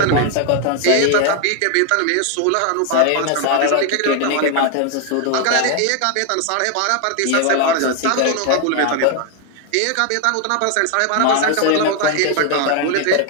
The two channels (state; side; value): different; both; correlation 0.00